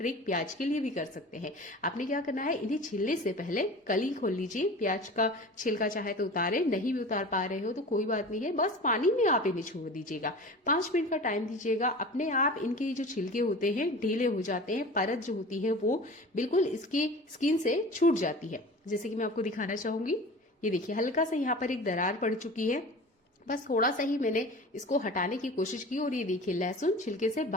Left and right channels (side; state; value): both; normal; correlation 0.37